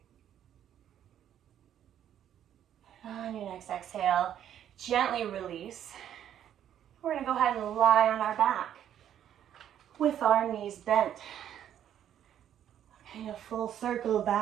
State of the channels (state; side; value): quieter; left; 10.3 dB